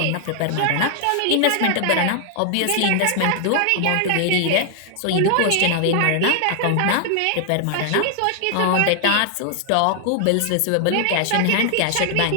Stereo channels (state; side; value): different; both; correlation 0.00